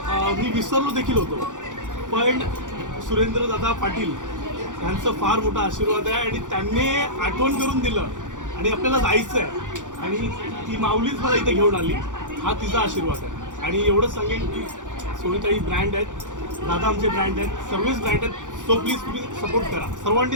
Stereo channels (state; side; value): late; left; 0.87 ms